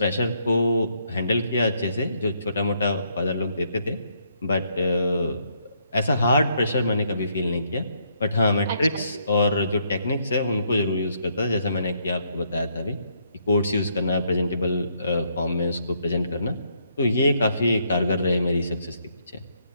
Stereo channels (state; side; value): inverted; both; correlation -0.72